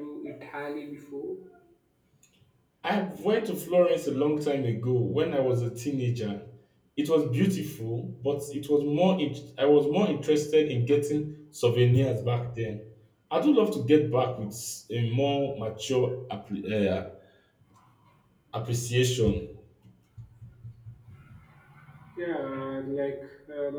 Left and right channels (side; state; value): both; identical; correlation 1.00